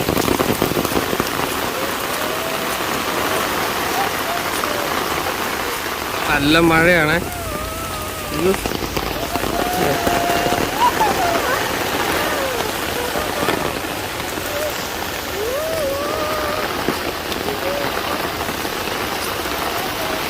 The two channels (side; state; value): both; identical; correlation 1.00